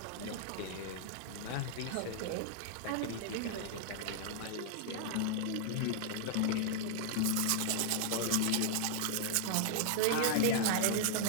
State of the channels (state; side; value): different; both; correlation 0.00